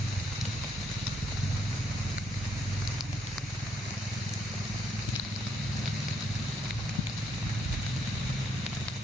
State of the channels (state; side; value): normal; both; correlation 0.73